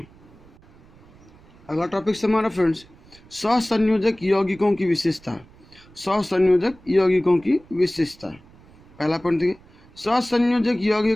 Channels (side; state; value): right; noise; rumble, 26 dB below the sound